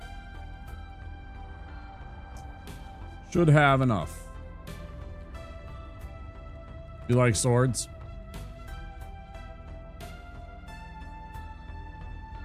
Should have enough. You like swords?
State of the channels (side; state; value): both; identical; correlation 1.00